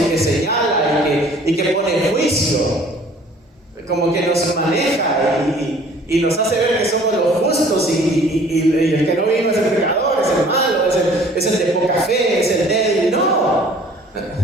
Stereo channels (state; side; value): normal; both; correlation 0.53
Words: que señala y que pone juicio, como que nos maneja y nos hace ver que somos los justos y el que no vino es el pecador, es el malo, es el de poca fe, es el débil. No.